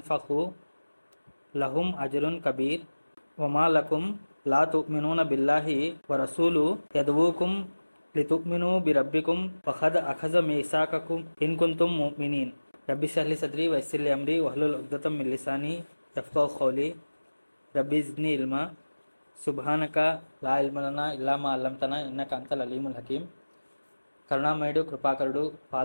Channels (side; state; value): both; inverted; correlation -1.00